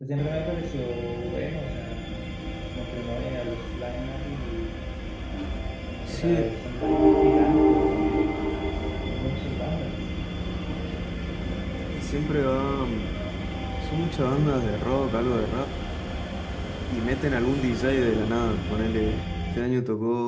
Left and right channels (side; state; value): both; identical; correlation 1.00